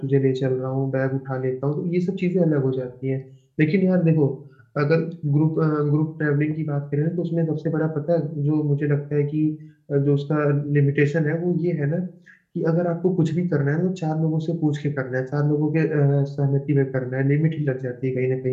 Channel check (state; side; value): identical; both; correlation 1.00